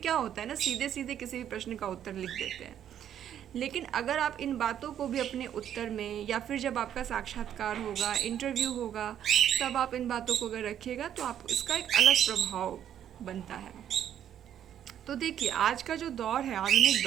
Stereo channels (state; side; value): quieter; left; 10.1 dB